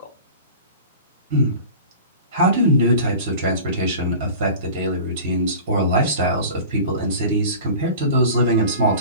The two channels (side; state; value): both; inverted; correlation -0.38